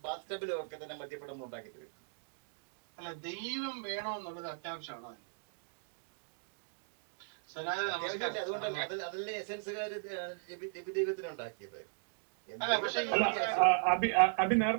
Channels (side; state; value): left; silent; digital silence